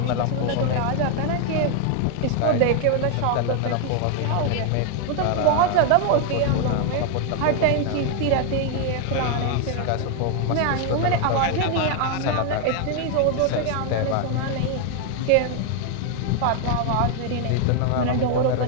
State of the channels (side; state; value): both; different; correlation 0.01